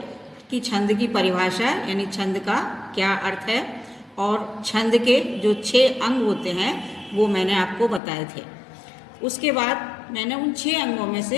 कि छंद की परिभाषा यानी छंद का क्या अर्थ है और छंद के जो 6 अंग होते हैं वो मैंने आपको बताए थे। उसके बाद मैंने उन 6 अंगों में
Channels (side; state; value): right; drops out; at 8.0 s